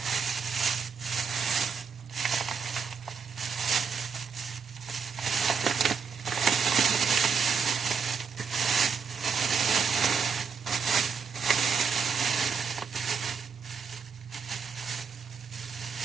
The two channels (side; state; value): left; quieter; 6.0 dB